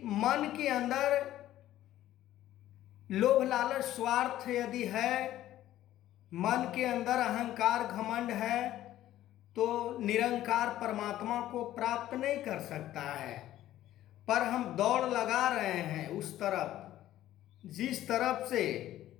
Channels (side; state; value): right; quieter; 13.6 dB